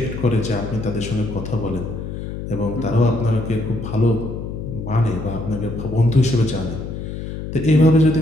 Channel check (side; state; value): left; noise; hum, 7 dB below the sound